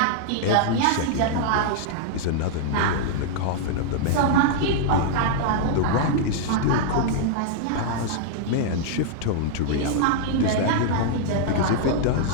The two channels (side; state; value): both; different; correlation -0.01